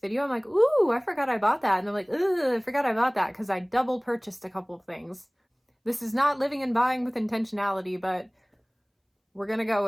I'm like, ooh, I forgot I bought that, and I'm like, ugh, I forgot I bought that because I double purchased a couple of things. This is not living and buying with intentionality, but we're gonna go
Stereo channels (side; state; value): both; identical; correlation 1.00